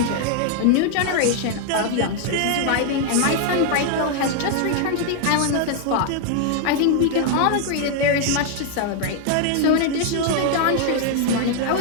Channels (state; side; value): different; both; correlation 0.00